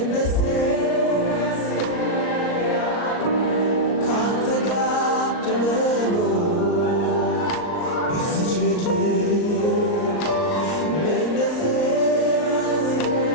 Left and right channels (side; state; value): right; late; 39 ms